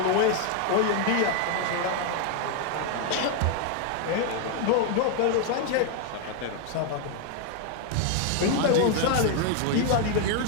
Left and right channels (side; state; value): both; different; correlation 0.01